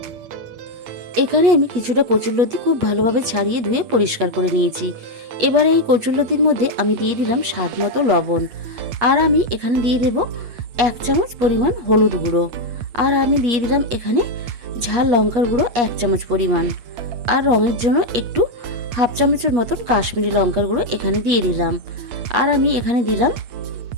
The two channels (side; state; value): left; late; 8.3 ms